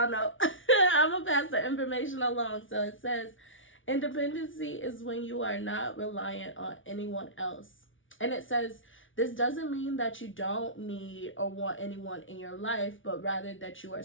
know. I'm going to pass the information along. So it says, independency is when you are not reliant on anyone else. And it says, this doesn't mean that you don't need or want anyone in your life, but rather that you are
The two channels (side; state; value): right; late; 0.57 ms